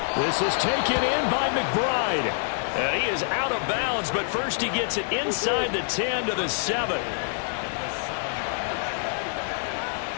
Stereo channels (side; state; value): right; silent; digital silence